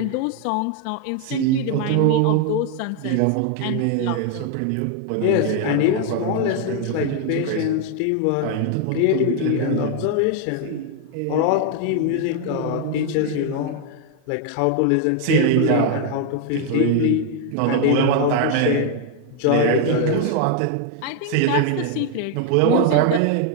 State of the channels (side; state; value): both; different; correlation 0.01